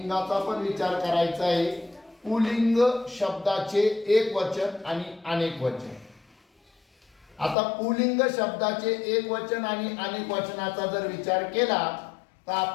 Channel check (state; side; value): drops out; right; at 7.6 s